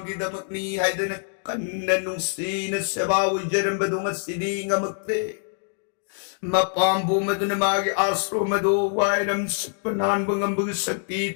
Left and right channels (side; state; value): right; silent; 60 dB below the other